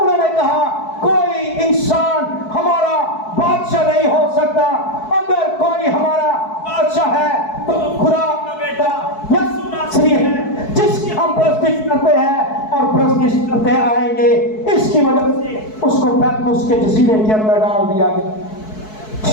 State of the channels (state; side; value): late; right; 4.6 ms